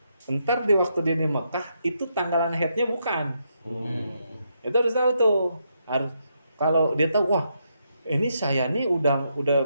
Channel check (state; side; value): inverted; both; correlation -0.79